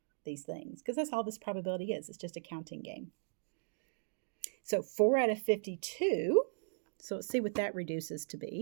these things, because that's all this probability is. It's just a counting game. So 4 out of 52, so let's see what that reduces to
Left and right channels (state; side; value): silent; left; digital silence